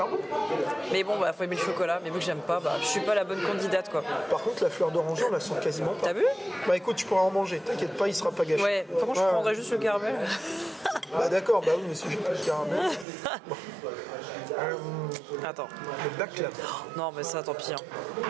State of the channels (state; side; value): drops out; left; at 13.1 s